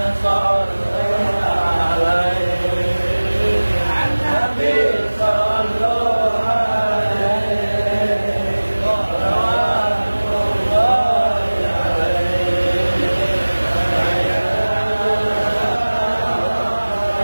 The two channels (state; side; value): inverted; both; correlation -1.00